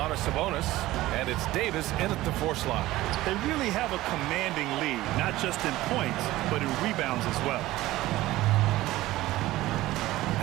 Sabonis, and it's Davis in at the 4 slot. They really have a commanding lead, not just in points, but in rebounds as well.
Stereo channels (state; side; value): quieter; left; 16.9 dB